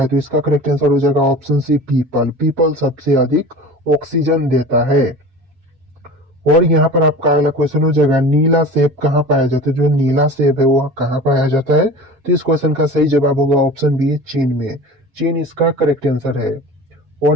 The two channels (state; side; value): late; left; 7.5 ms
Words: तो इसका करेक्ट आंसर हो जाएगा ऑप्शन सी, पीपल। पीपल सबसे अधिक ऑक्सीजन देता है। और यहाँ पर आपका अगला क्वेश्चन हो जाएगा, नीला सेब कहाँ पाया जाता है? जो नीला सेब है वो कहाँ पाया जाता है? तो इस क्वेश्चन का सही जवाब होगा ऑप्शन बी, चीन में। चीन इसका करेक्ट आंसर है।